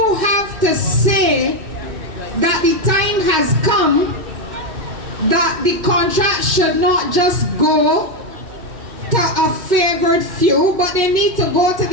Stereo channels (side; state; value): left; late; 2.6 ms